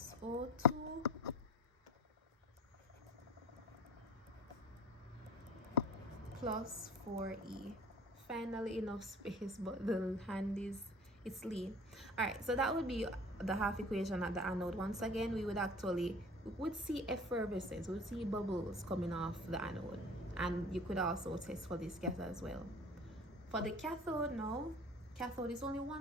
O2 plus 4E. Finally enough space, but the hand is, it's lean. All right, so that would be the half equation at the anode. Once again, we would see effervescence, we would see bubbles coming off the anode, and you could also test for this gas as well. For the cathode, no, cathode is only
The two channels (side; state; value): both; normal; correlation 0.43